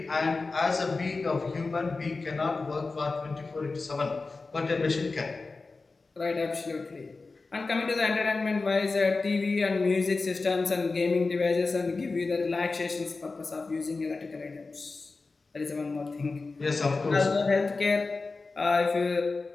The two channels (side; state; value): right; quieter; 3.8 dB